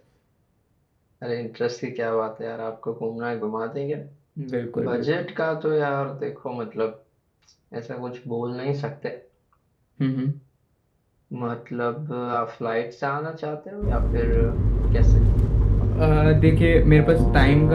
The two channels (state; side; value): identical; both; correlation 1.00